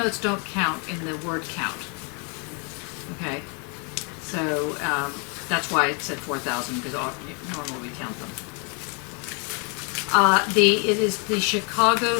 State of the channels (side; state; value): right; quieter; 36.0 dB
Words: don't count in the word count. Okay? So that's why it said 4,000, because normally we count them. It is the Chicago